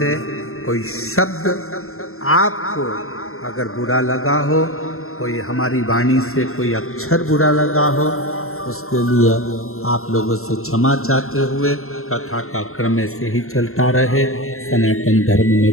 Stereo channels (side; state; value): right; late; 0.62 ms